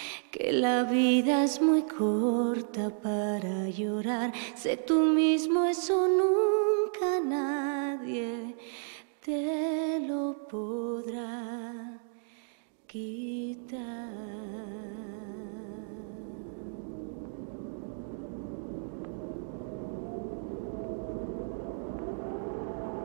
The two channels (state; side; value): silent; left; digital silence